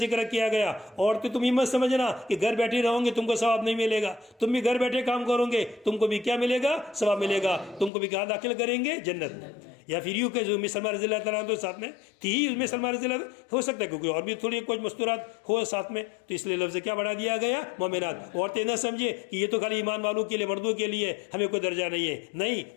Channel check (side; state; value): right; drops out; at 7.9 s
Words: کیا گیا. عورتیں تم یہ مت سمجھنا کہ گھر بیٹھے رہو گے تم کو ثواب نہیں ملے گا, تم بھی گھر بیٹھے کام کرو گے تم کو بھی کیا ملے گا, ثواب ملے گا, تم کو بھی کہاں داخل کریں گے, جنت میں. یا پھر یوں کہ جو سلمان رضی اللہ تعالیٰ عنہ ساتھ میں تھی ہی, سلمان رضی اللہ ہو سکتا ہے کیونکہ اور بھی تھوڑی کچھ مستورات ہو ساتھ میں, تو اس لیے لفظ کیا بڑھا دیا گیا, مومنات. عورتیں نہ سمجھے کہ یہ تو خالی ایمان والوں کے لیے, مردوں کے لیے, ہمیں کوئی درجہ نہیں ہے, نہیں,